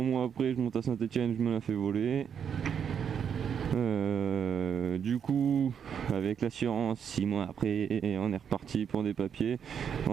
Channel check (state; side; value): quieter; left; 7.8 dB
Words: après, je monte à Saint-Etienne, je me la fais voler. Du coup, avec l'assurance, 6 mois après, on est reparti pour des papiers.